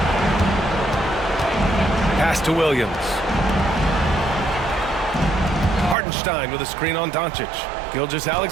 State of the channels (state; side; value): drops out; left; at 6.0 s